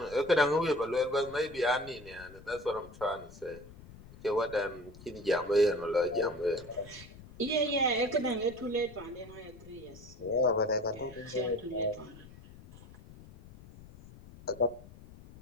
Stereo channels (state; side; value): noise; left; rumble, 19 dB below the sound